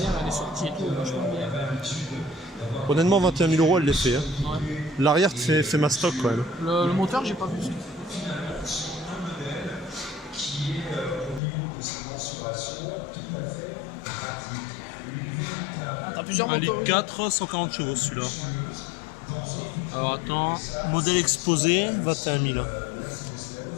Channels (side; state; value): right; drops out; at 11.4 s